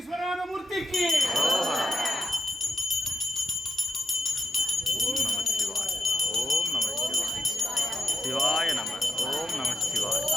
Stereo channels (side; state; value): both; normal; correlation 0.82